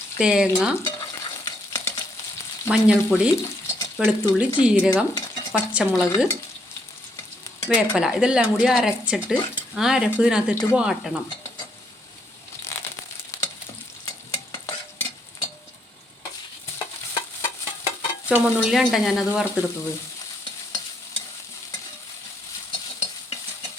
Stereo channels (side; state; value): both; normal; correlation 0.73